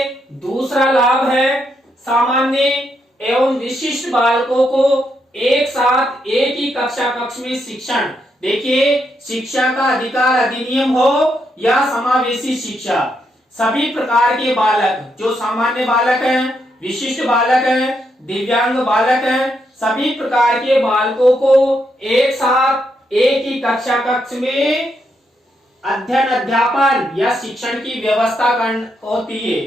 दूसरा लाभ है सामान्य एवं विशिष्ट बालकों को एक साथ एक ही कक्ष में शिक्षण। देखिए, शिक्षा का अधिकार अधिनियम हो या समावेशी शिक्षा, सभी प्रकार के बालक, जो सामान्य बालक हैं, विशिष्ट बालक हैं, दिव्यांग बालक हैं, सभी प्रकार के बालकों को एक साथ एक ही कक्ष में अध्ययन अध्यापन या शिक्षण की व्यवस्था होती है।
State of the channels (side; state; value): both; normal; correlation 0.79